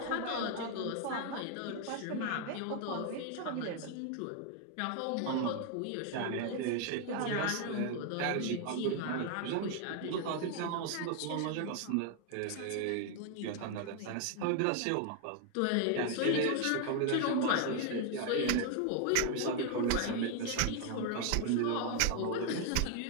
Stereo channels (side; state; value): both; different; correlation 0.00